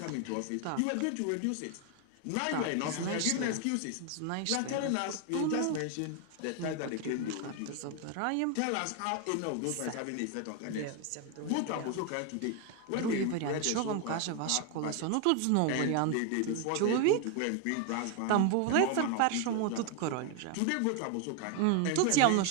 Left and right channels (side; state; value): both; different; correlation 0.01